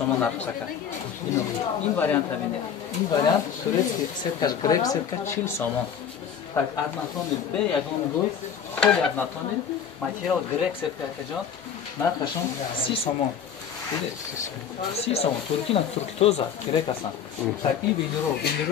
нархсака. ин вариант ҳамине. ин вариант турецки сеткаш грек сетка 40 сомон. так аднатони бе ягон гӯй холи аднатони материал грек сетка акаҷон нархашон 30 сомон. 30 сомон туркина турки тоза грек ҳастанд. так ин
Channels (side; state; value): right; quieter; 7.9 dB